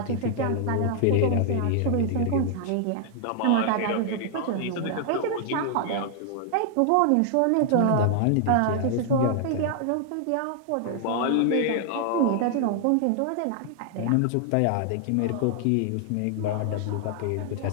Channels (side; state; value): both; different; correlation 0.00